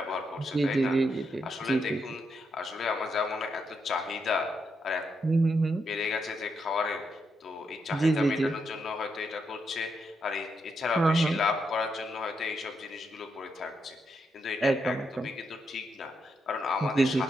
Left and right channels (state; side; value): normal; both; correlation 0.81